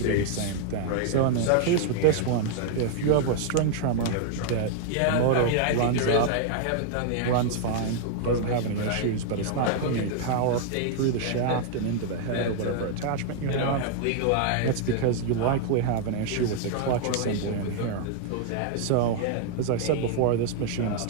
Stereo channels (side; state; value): both; different; correlation 0.00